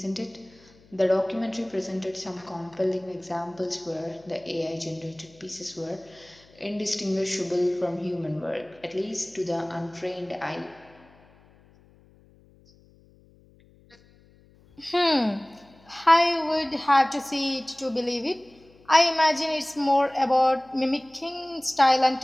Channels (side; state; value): left; noise; hum, 28 dB below the sound